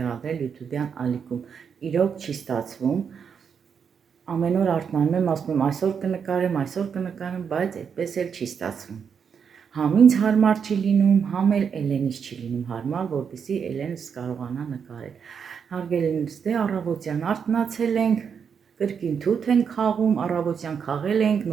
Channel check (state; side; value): quieter; left; 6.8 dB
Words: YouTube-յան ալիքում։ Իրոք չի ստացվում։ Ամեն օր արթնանում եմ, ասում եմ այսօր կնկարեմ, բայց այդպես էլ չի ստացվում։ Համ ինձ հարմար չի լինում, համ էլ Էլենից չի լինում հարմար, որպեսզի Էլենս կարողանա նկարել։ Հարգելիներս, դե առավոտյան արթնացել ենք, կրկին թութ ենք խաղում, առավոտյան խաղել ենք,